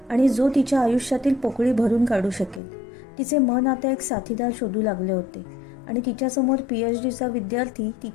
आणि जो तिच्या आयुष्यातील पोकळी भरून काढू शकेल. तिचे मन आता एक साथीदार शोधू लागले होते आणि तिच्यासमोर PhDचा विद्यार्थी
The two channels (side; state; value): right; drops out; at 2.6 s